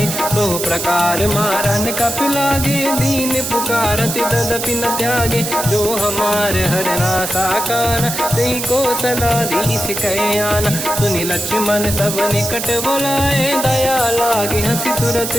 दो प्रकार मारन कपि लागे दीन पुकारति तदपि न त्यागे जो हमार हरना साकान तेहि को सलाधीश कहे आना सुनि लक्ष्मण सब निकट बुलाए दया लागे हंसी तुरत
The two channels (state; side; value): noise; right; hiss, 4 dB below the sound